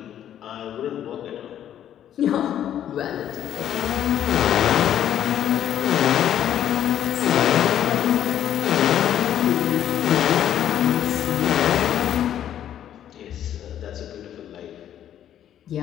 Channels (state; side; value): quieter; right; 10.7 dB